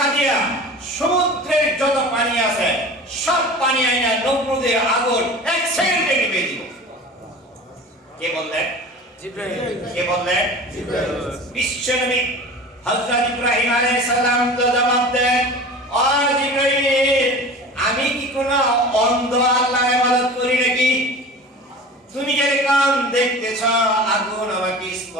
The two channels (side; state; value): both; normal; correlation 0.37